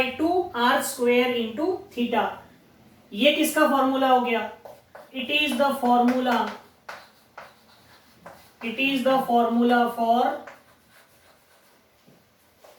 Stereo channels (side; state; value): both; identical; correlation 1.00